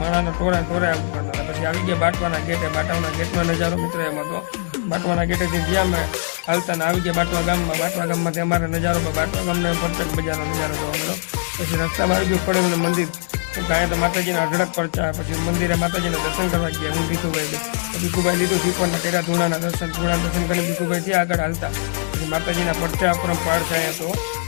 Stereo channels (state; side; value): silent; right; digital silence